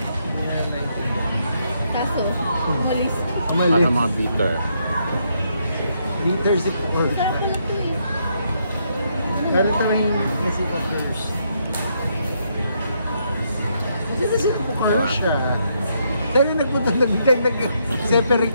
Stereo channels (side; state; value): both; inverted; correlation -0.76